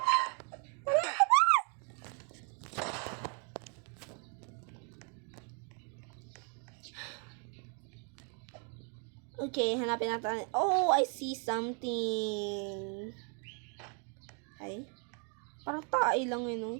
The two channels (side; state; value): left; quieter; 39.0 dB